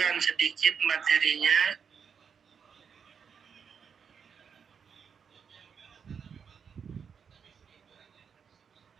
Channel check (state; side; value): quieter; left; 6.8 dB